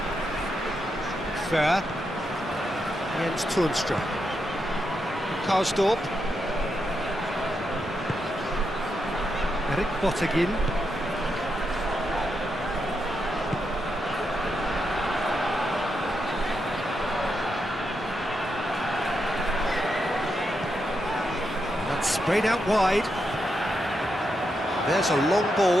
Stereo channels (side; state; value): both; normal; correlation 0.84